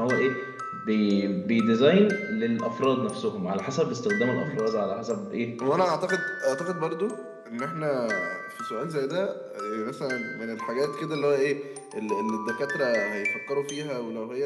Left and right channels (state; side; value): identical; both; correlation 1.00